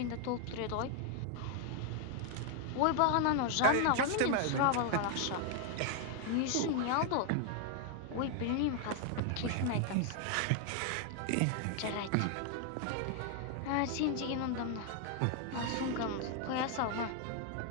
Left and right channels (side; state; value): both; different; correlation 0.00